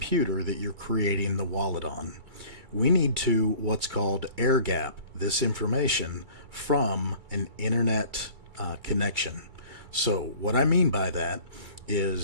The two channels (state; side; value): late; left; 2.3 ms